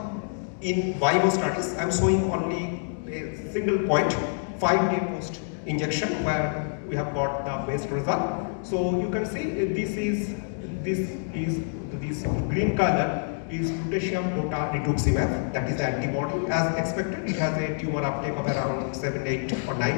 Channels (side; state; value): right; silent; 60 dB below the other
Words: in vivo studies. I am showing only a single point, 5-day post injection, where we have got the best result. So you can see this green color is lutetium dotarituzumab, that is the antibody. As expected, it has a tumor uptake of around 7, 8 or